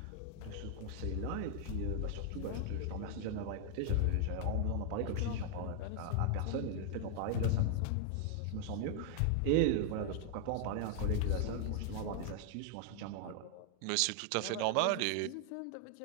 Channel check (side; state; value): both; different; correlation 0.00